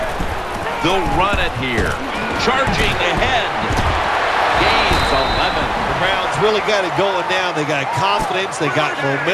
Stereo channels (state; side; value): identical; both; correlation 1.00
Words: They'll run it here. Charging ahead. Gains 11. The Browns really got it going now. They got confidence. They got